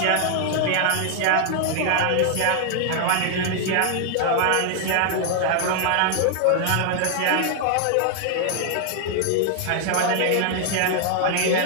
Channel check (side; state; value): both; different; correlation 0.00